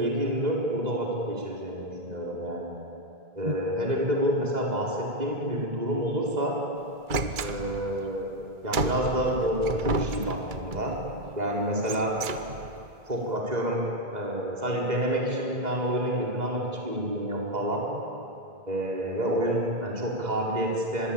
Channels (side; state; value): left; late; 2.3 ms